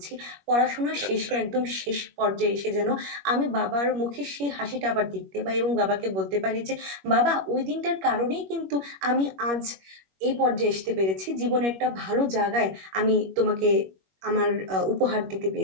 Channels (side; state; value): left; late; 21 ms